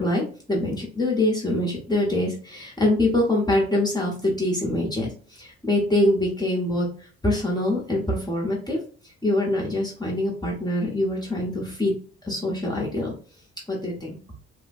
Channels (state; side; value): normal; both; correlation 0.61